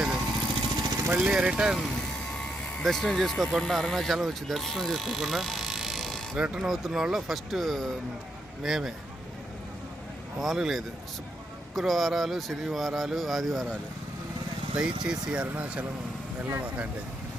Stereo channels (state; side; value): normal; both; correlation 0.79